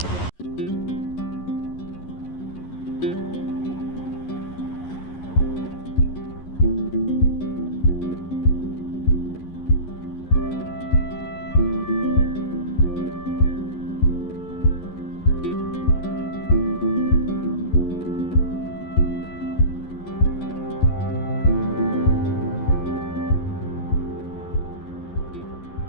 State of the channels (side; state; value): right; late; 11 ms